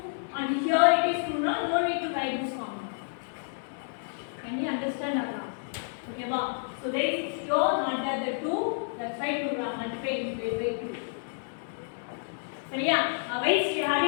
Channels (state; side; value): silent; right; digital silence